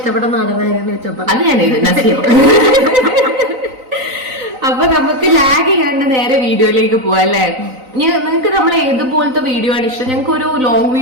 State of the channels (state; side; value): late; left; 3.9 ms